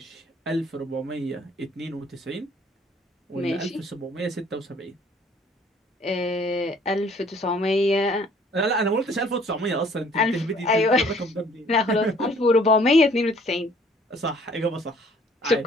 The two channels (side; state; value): both; normal; correlation 0.58